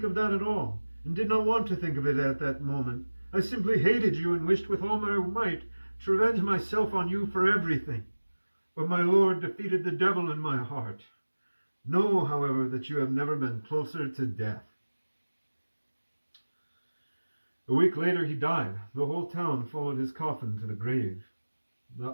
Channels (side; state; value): both; inverted; correlation -1.00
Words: of that at all, and did not want to think of it at that moment. I simply hated you and wished with all my might to revenge myself on you for everything. But my Lord defeated the devil in my heart. Know, however, that you have never been closer to death." A week later he died. The whole town followed his coffin to the grave. The